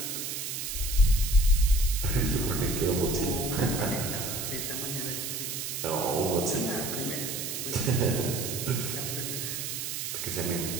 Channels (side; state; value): right; noise; hiss, 4 dB below the sound